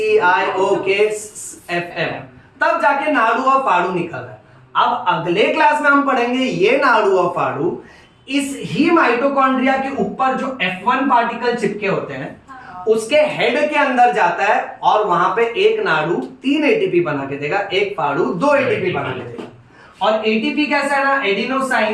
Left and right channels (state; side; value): identical; both; correlation 1.00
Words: तब जाके नाड़ू और फाड़ू निकल रहा है। अब अगले क्लास में हम पढ़ेंगे ये नाड़ू और फाड़ू इस ही माइटोकॉन्ड्रिया के ऊपर जो F1 पार्टिकल चिपके होते हैं उसके हेड के अंदर जाता है, और वहां पे एक नाड़ू 3 एटीपी बना के देगा, एक फाड़ू 2 एटीपी बना के देगा। और एटीपी कैसा है ना,